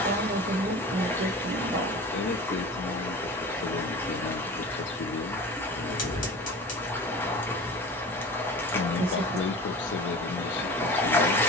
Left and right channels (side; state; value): both; normal; correlation 0.36